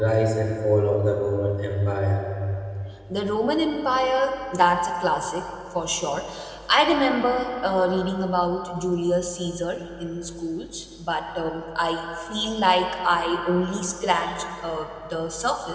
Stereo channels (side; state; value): both; identical; correlation 1.00